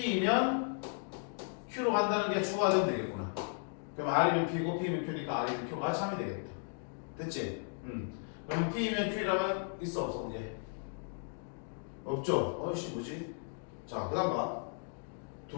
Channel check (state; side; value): silent; right; 54 dB below the other